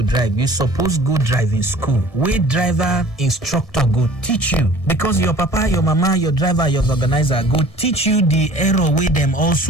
drive, you suppose go driving school where driver instructor go teach you, because your papa, your mama, your driver, your organizer go teach you the error wey them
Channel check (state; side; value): late; right; 1.7 ms